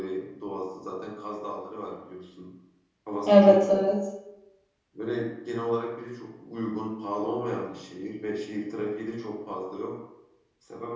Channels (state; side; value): identical; both; correlation 1.00